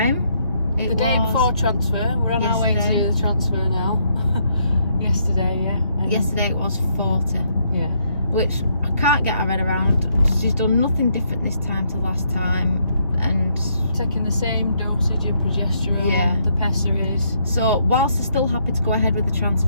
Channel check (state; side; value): inverted; both; correlation -0.72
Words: the day before transfer, we're on our way to do the transfer now. Yesterday, yeah. Yesterday it was 40. Yeah. Which I can't get my head around. She's done nothing different this time to last time, and taking the same dosage of progesterone, the pessaries. So whilst they're still happy to go ahead with the